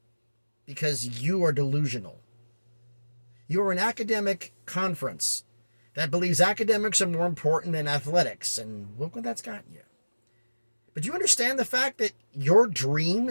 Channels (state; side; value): inverted; both; correlation -1.00